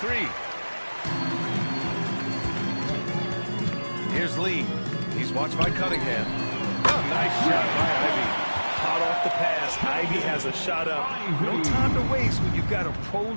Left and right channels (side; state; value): both; inverted; correlation -1.00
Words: Here's Lee. He's watched by Cunningham. Oh, nice shot by Ivy. Hot off the pass. Ivy has a shot up. No time to waste when you've got a